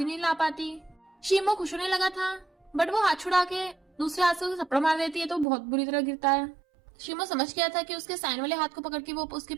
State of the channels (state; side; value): drops out; left; at 5.5 s